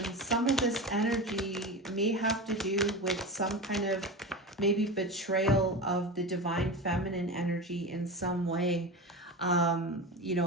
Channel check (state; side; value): normal; both; correlation 0.25